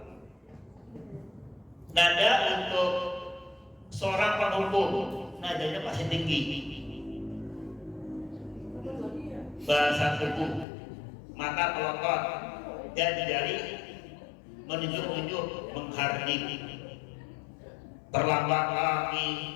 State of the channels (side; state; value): right; drops out; at 10.7 s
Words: Nada untuk seorang penghukum, nadanya masih tinggi. Bahasa tubuh, mata pelotot, dan jari menunjuk-nunjuk, menghardik. Terlambat lagi,